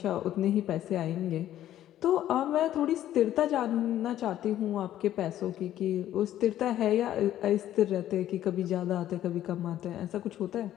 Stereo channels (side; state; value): right; quieter; 12.4 dB